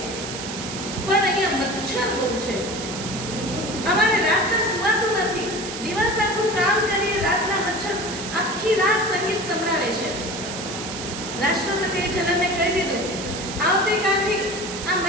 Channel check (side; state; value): right; noise; hiss, 8 dB below the sound